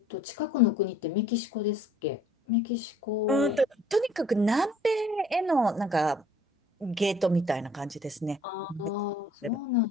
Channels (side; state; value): both; normal; correlation 0.56